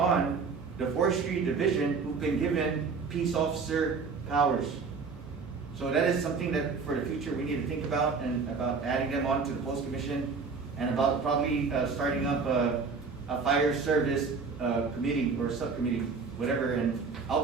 the forestry division, who've been given peace officer powers. So that is something that for the future we need to think about, and about adding them on to the post commission, and about probably starting up a fire service committee or subcommittee, whatever. And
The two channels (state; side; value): quieter; left; 4.9 dB